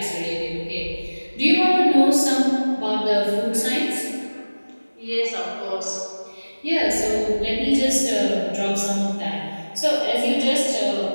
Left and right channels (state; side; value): inverted; both; correlation -1.00